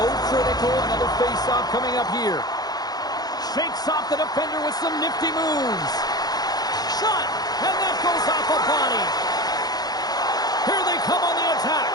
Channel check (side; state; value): right; late; 0.19 ms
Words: critical. Another face-off coming up here. Shakes off the defender with some nifty moves. Shot, and that goes off a body. Here they come on the attack.